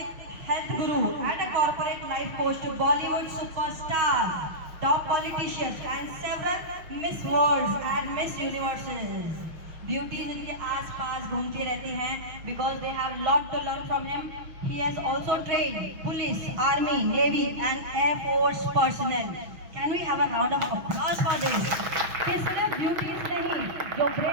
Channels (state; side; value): late; left; 6.1 ms